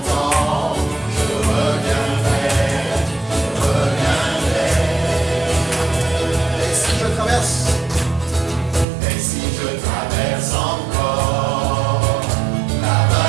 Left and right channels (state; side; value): drops out; left; at 8.8 s